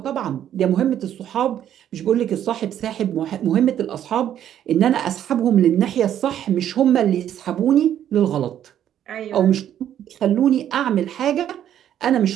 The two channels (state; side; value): quieter; left; 10.5 dB